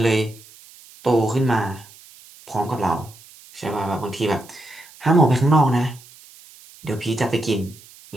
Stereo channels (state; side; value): noise; right; hiss, 23 dB below the sound